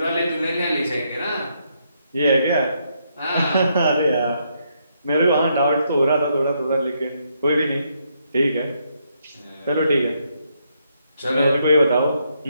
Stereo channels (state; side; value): inverted; both; correlation -0.76